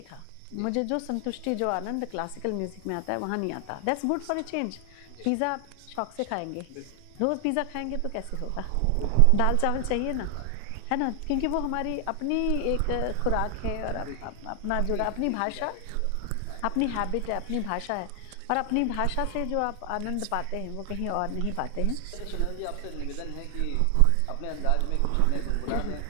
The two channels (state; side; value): different; both; correlation 0.00